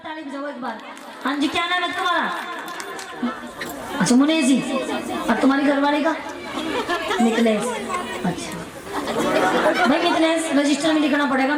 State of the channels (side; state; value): both; identical; correlation 1.00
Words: ताली बजाओ एक बार। हाँ जी, क्या नाम है तुम्हारा? अच्छा मुनेश जी। और तुम्हारी घरवाली का? मिथिलेश। अच्छा भाई मिथिलेश रजिस्टर में लिखना पड़ेगा,